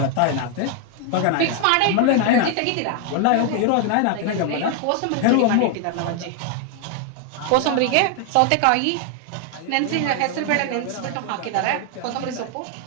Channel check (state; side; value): different; both; correlation 0.00